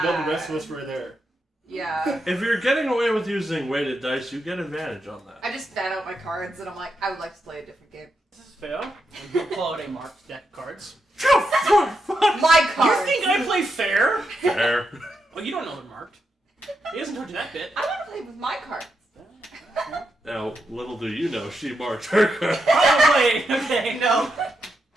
well, the rest of us were there. Yeah. If you're getting away with using weighted dice, you get advantage on that. I just fan out my cards and I'm like, I would like to play a different game. This is fair. And he'll pull out a marked deck of cards. My You cards! think I play fair? Fair. Oh, you don't know they're marked. He hasn't told you that bit. I want to play with my cards. Now, little do you know, she marked her card. Probably. Okay. No.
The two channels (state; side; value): normal; both; correlation 0.84